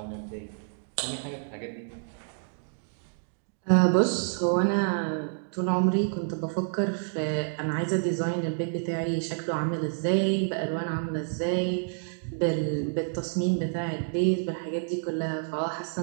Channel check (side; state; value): left; silent; digital silence